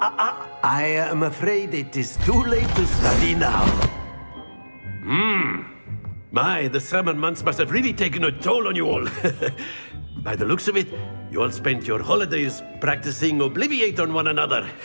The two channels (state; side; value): inverted; both; correlation -1.00